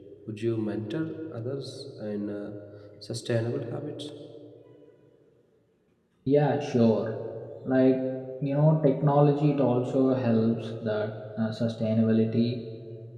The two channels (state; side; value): identical; both; correlation 1.00